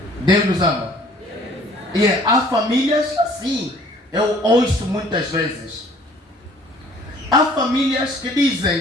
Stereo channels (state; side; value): normal; both; correlation 0.55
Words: Deus nos ama. E há famílias assim. Eu ouço muitas vezes. Há famílias que